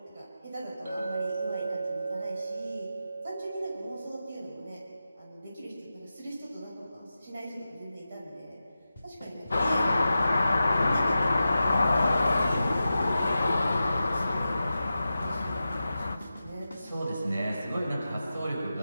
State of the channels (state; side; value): inverted; both; correlation -0.92